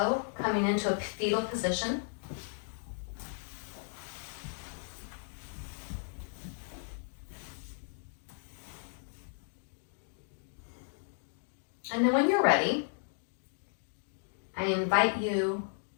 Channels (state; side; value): silent; right; digital silence